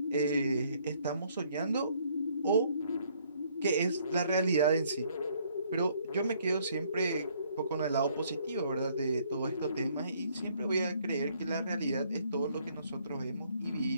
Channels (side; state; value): both; inverted; correlation -0.65